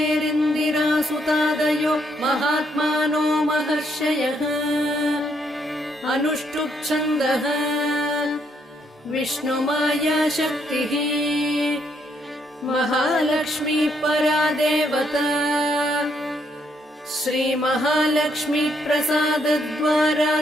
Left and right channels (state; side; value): normal; both; correlation 0.73